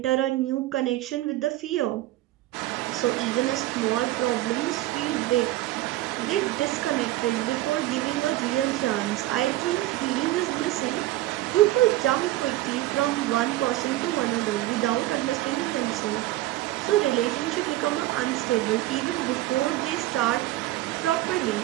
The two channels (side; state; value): left; quieter; 16.2 dB